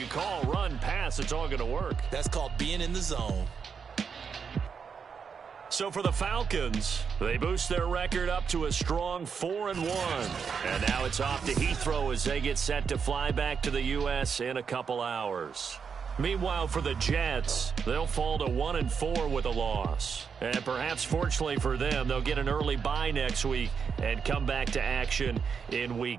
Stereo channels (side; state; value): left; quieter; 6.2 dB